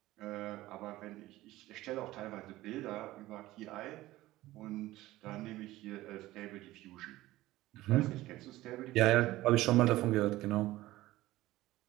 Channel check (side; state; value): left; quieter; 16.9 dB